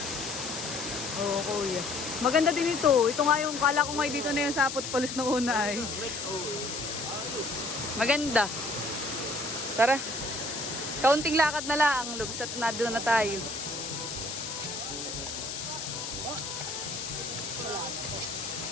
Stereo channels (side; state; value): left; noise; hiss, 6 dB below the sound